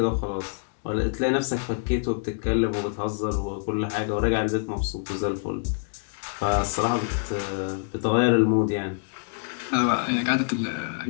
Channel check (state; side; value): silent; right; digital silence